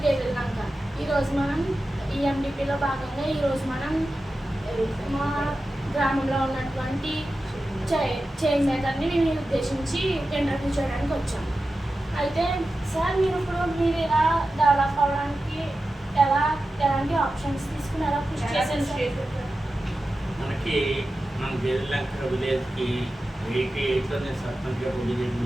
Gedellanka. ఈరోజు మనం ఈఎండిపిలో భాగంగా ఈరోజు మనం మా గ్రామంలో ఉన్నటువంటి చైన్ మేకర్ని మేము ఉద్దేశించి ఇంటర్వ్యూ చేయడానికి వచ్చాం. అయితే సార్ మీరు ఇలా డెవలప్ అవ్వడానికి ఎలాంటి ఆప్షన్స్ తీసుకుని ఎలా కృషి చేశారు? మనకి మన గేదెల్లంక విలేజ్కి 88లో నేను సర్పంచ్గా పోటీ చేయడం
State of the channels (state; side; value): normal; both; correlation 0.93